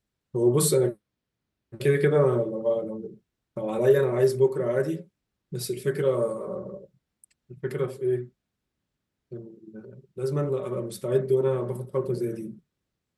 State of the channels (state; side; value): identical; both; correlation 1.00